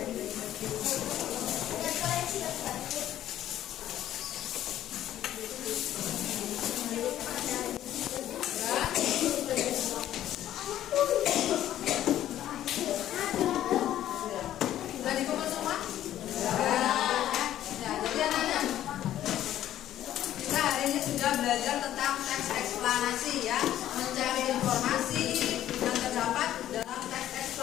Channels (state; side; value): quieter; right; 12.3 dB